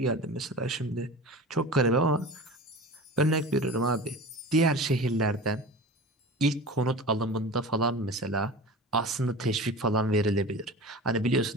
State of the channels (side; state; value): both; normal; correlation 0.34